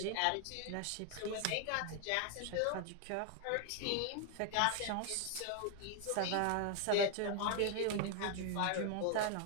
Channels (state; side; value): different; both; correlation 0.00